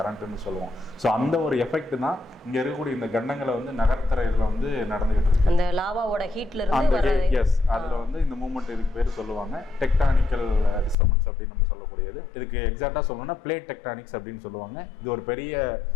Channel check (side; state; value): right; drops out; at 11.0 s